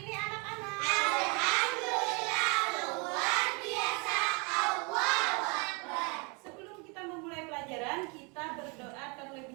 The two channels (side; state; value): left; quieter; 31.8 dB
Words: ini anak-anak? Alhamdulillah luar biasa. Allahu Akbar. Sebelum kita memulai pelajaran, kita berdoa